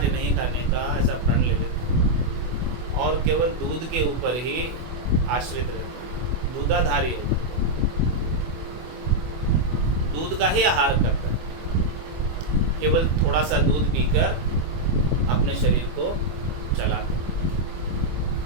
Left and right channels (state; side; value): late; left; 24 ms